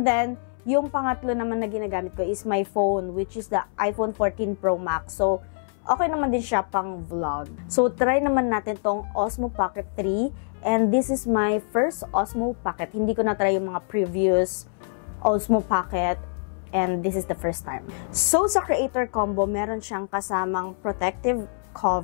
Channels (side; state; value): right; silent; 62 dB below the other